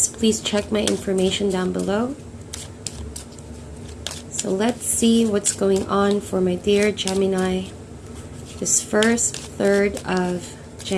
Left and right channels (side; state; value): both; identical; correlation 1.00